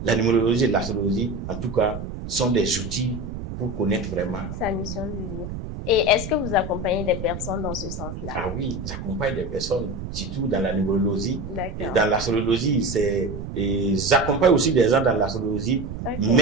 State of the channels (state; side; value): noise; right; rumble, 8 dB below the sound